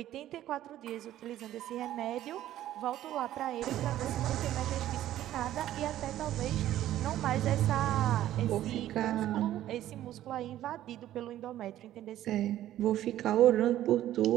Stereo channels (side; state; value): left; quieter; 13.0 dB